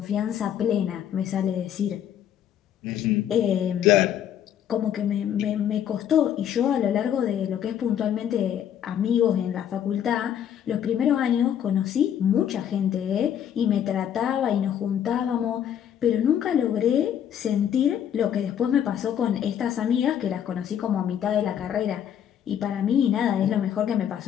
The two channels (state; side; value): quieter; right; 9.6 dB